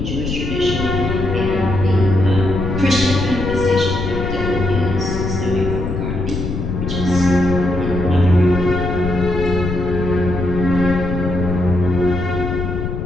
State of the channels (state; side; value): noise; left; rumble, 4 dB below the sound